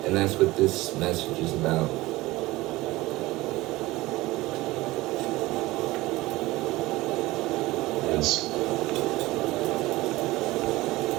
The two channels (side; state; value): left; quieter; 19.2 dB